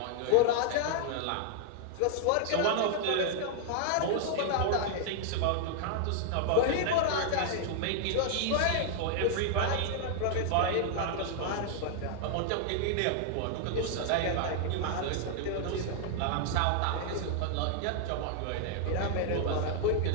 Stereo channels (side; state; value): both; different; correlation 0.00